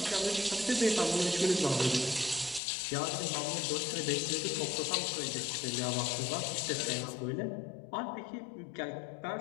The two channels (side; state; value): right; drops out; at 2.6 s